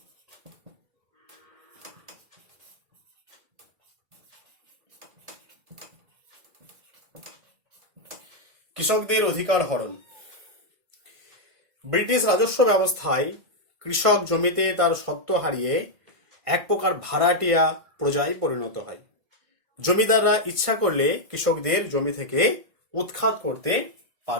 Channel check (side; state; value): left; late; 1.6 ms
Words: কৃষকদের অধিকার হরণ। ব্রিটিশ রাজস্ব ব্যবস্থায় কৃষক জমিতে তার স্বত্ব হারিয়ে এক প্রকার ভাড়াটিয়া প্রজায় পরিণত হয়। জমিদাররা ইচ্ছা করলে কৃষকদের জমি থেকে উৎখাত করতে